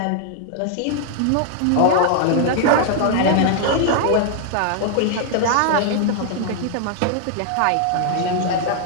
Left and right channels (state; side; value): different; both; correlation 0.00